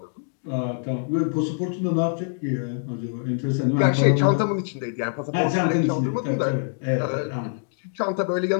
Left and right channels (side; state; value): right; silent; digital silence